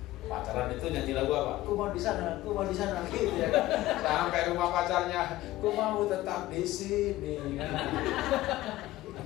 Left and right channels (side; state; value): right; quieter; 16.4 dB